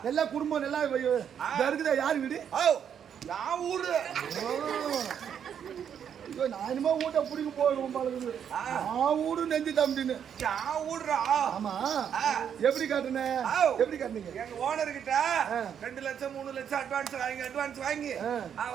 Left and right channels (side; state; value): left; quieter; 8.4 dB